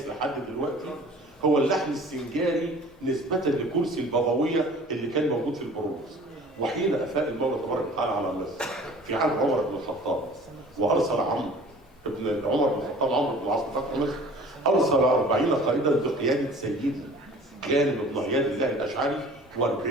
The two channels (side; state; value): both; normal; correlation 0.47